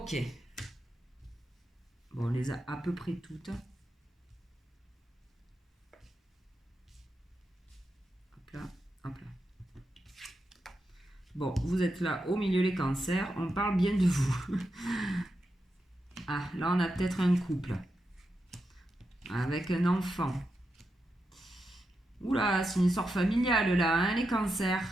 Bon, on les a à peu près toutes. Hop là, hop là. Bon, vous êtes là au milieu les cancers. On parle bien de vous. Ah, là, on a peut-être un couple. Avec un enfant. Oula, c'est une histoire familiale là, les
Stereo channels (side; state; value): both; normal; correlation 0.87